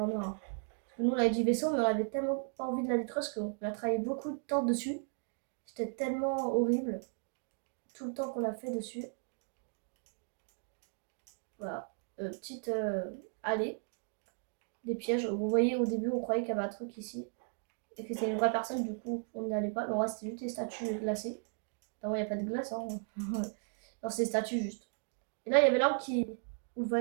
noir. Hein. Parce que nous, on avait dit vaisseau, mais on avait tellement pas envie de la détruire parce qu'on a travaillé beaucoup de temps dessus. C'était tellement horrible. Tout le temps qu'on a fait dessus. Voilà. Petite allée. Des pièges. Vous voyez, au début, on croyait qu'il y avait un truc ici. Et que c'était une vraie personne, du coup, on n'y allait pas. Mais en vrai, c'était juste des statues glacées. Non, il n'y a pas de glace, hein. Non, c'est des statues juste. Et là, il y avait l'arbre où le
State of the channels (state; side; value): silent; left; 54 dB below the other